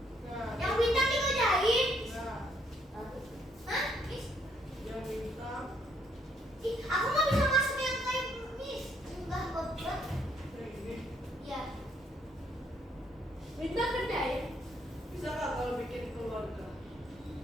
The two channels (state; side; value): normal; both; correlation 0.70